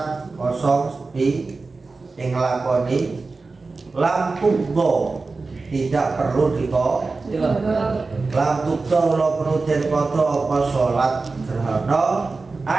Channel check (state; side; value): quieter; left; 3.9 dB